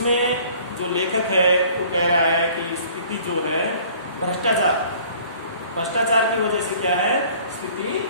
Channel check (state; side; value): inverted; both; correlation -0.52